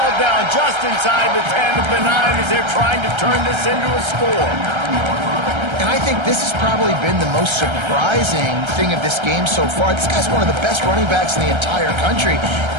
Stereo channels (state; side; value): late; left; 1.3 ms